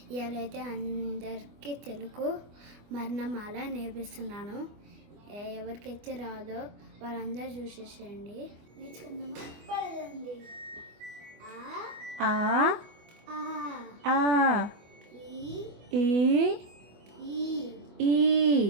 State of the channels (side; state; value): left; late; 24 ms